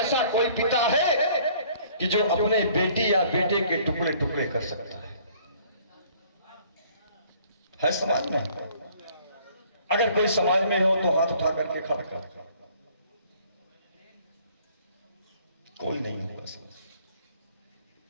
कोई पिता है कि जो अपने बेटी या बेटे के टुकड़े टुकड़े कर सकता है समाज में? अगर कोई समाज में हो तो हाथ उठा करके खड़ा कर। कोई नहीं होगा समाज।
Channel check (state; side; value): inverted; both; correlation -0.57